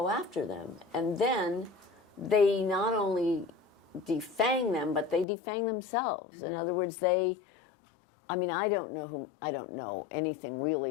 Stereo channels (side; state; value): right; drops out; at 5.2 s